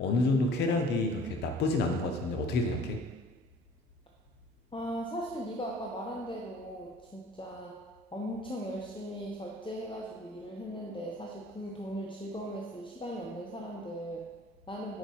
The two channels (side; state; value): both; normal; correlation 0.50